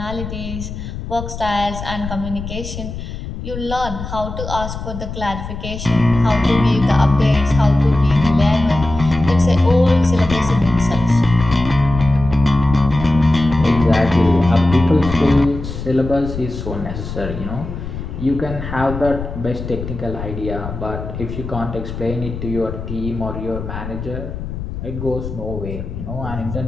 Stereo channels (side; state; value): left; noise; rumble, 8 dB below the sound